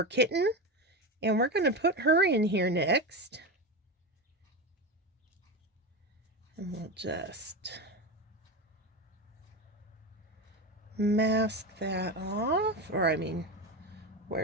Kitten. And we're going to put her in here next. And we'll just mask that off. Or, I mean,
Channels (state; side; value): normal; both; correlation 0.19